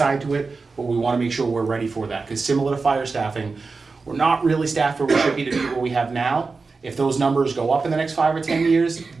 to it, but we wanna make sure we're ready for that, because similar to fire staffing, we're not really staffed where we should be to be what we have now. If those numbers go up in the next 5 or 10 years,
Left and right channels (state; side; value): quieter; left; 4.3 dB